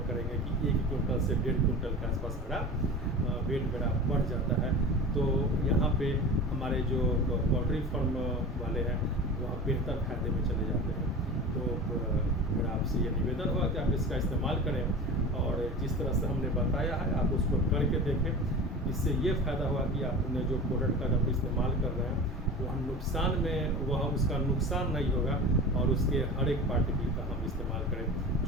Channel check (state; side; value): normal; both; correlation 0.33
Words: करेंगे कि 1 क्विंटल से 1.5 क्विंटल के आसपास मेरा वेट मेरा बढ़ जाता है। तो यहाँ पे हमारे जो पोल्ट्री फार्म वाले हैं वह बेहतर फायदे में चले जाते हैं। तो मेरा आपसे ये निवेदन होगा कि आप इसका इस्तेमाल करें, और जिस तरह से हमने बताया है आप उसको करके देखें। इससे ये फ़ायदा हुआ कि आपने जो प्रोडक्ट का जब इस्तेमाल कर रहे हैं वह उसका नुकसान नहीं होगा, और उसके हर एक पार्टिकल का हम इस्तेमाल करें।